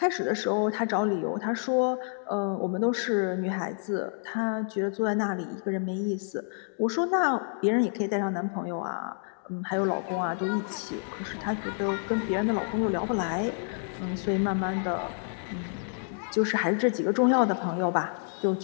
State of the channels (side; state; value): right; silent; digital silence